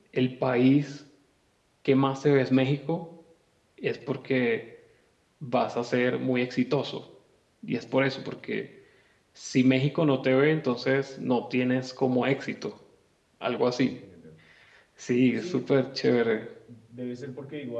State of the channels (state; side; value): identical; both; correlation 1.00